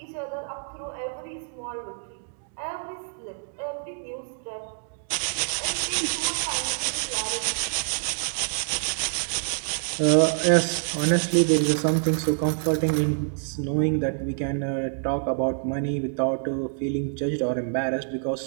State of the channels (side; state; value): left; silent; digital silence